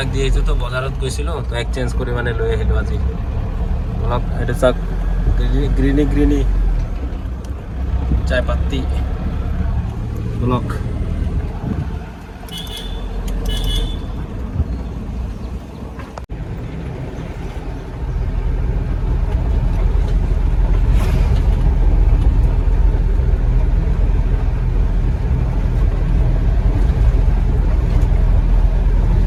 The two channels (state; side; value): identical; both; correlation 1.00